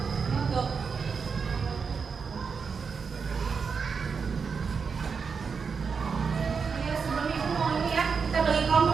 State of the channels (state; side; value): quieter; left; 5.6 dB